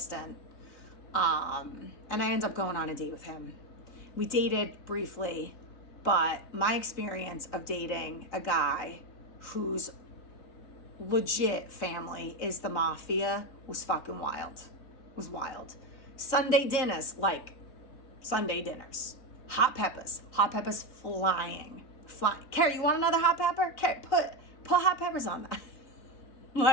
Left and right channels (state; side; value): late; right; 3.9 ms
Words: And I ended up going on a date with him. We dated briefly, but my experience of dating a guy whose legit family is the mafia was fucking wild. It was wild. Sunday dinners, like Sunday dinners. Hot peppers flying. Carrie, you want another hot pepper? Carrie, put hot peppers on that.